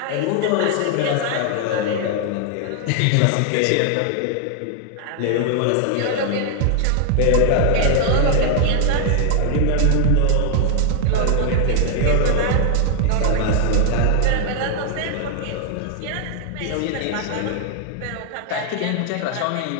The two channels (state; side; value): different; both; correlation 0.00